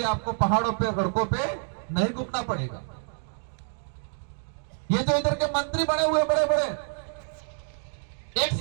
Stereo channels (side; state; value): left; silent; 60 dB below the other